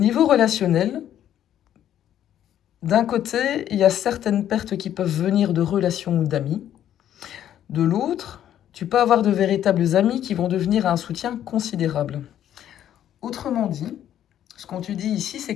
relationnel, d'un côté, il y a certaines pertes qui peuvent venir de relations ou d'amis. De l'autre, tu peux avoir de véritables amis qui vont devenir un soutien considérable. Autrement dit, ce qu'on te dit ici, c'est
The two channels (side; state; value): right; quieter; 10.9 dB